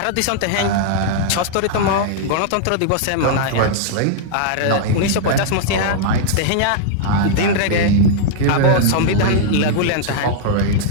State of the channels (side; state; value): both; different; correlation -0.01